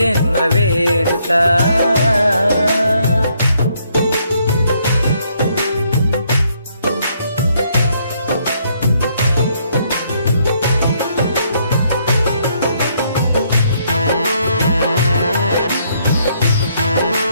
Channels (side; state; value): both; inverted; correlation -0.71